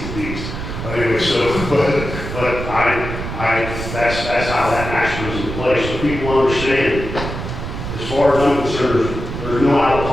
beast. But anyway, that's how that action was in place. So people understand, as far as I'm concerned, there's no out of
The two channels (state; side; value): noise; right; rumble, 6 dB below the sound